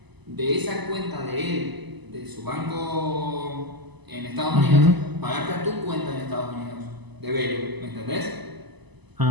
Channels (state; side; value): late; left; 1.0 ms